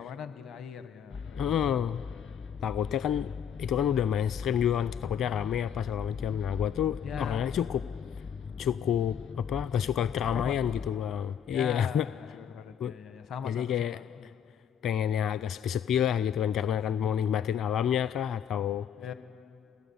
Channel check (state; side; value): quieter; right; 8.5 dB